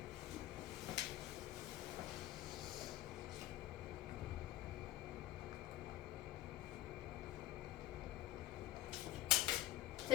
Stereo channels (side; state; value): right; quieter; 14.1 dB